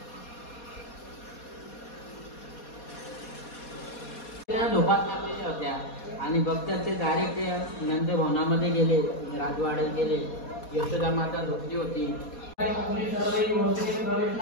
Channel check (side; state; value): right; late; 4.2 ms